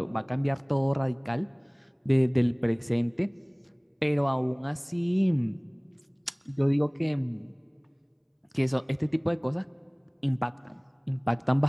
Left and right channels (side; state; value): both; identical; correlation 1.00